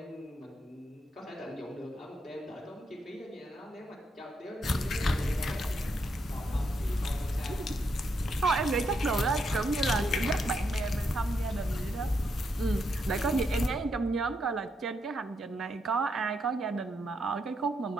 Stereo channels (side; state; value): both; normal; correlation 0.79